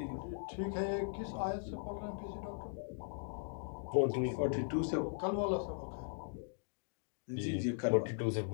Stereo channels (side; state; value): right; silent; digital silence